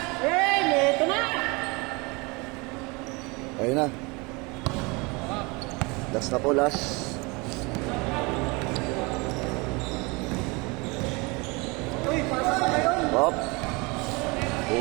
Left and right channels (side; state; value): left; quieter; 27.1 dB